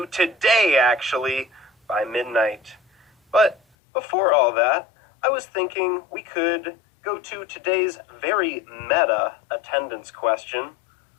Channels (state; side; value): drops out; right; at 3.6 s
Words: today, actually, by midnight. But before all that, I was thinking we could go to today's very meta attendance question.